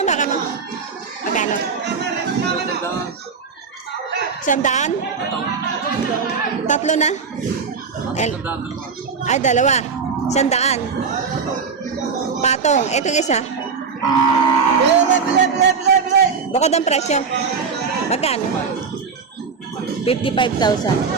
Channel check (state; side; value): quieter; left; 5.5 dB